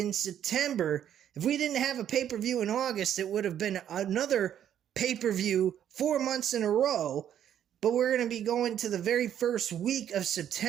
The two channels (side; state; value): left; quieter; 10.1 dB